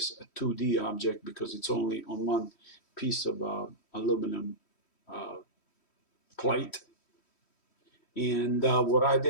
a 2D object because it's only on one piece of aluminum plate. And what I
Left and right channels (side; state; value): right; late; 3.1 ms